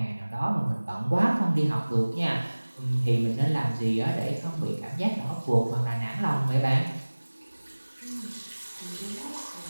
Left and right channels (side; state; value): both; inverted; correlation -1.00